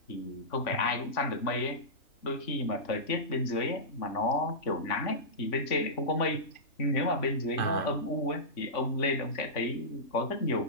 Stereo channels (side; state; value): right; late; 3.5 ms